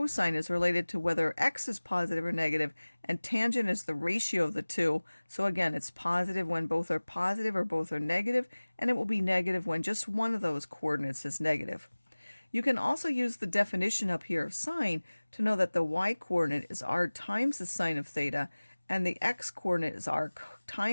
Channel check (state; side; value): inverted; both; correlation -1.00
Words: is related to whether x is positive or negative, and tangent is the ratio of the two. So again, it's positive when both are positive or both are negative, and it will be negative when just one of those coordinates is negative. You can also use the definition up here of sine to know that the y coordinate is r times the sine of theta, and the x coordinate is r